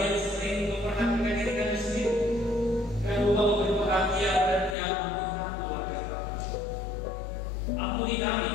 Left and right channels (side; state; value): right; drops out; at 4.8 s